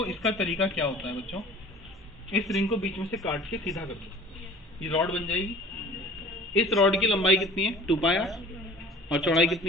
इसका तरीका क्या होता है बच्चों, इस रिंग को बीच में से काट के सीधा कर दो, ये रॉड बन जाएगी। इस रॉड की लंबाई कितनी है? 2πr, और चौड़ाई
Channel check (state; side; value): normal; both; correlation 0.46